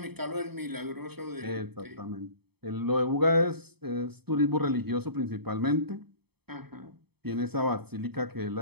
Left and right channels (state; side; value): late; left; 0.97 ms